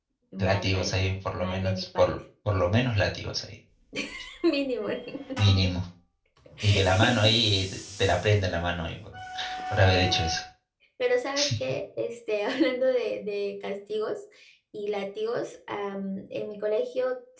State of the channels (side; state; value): both; identical; correlation 1.00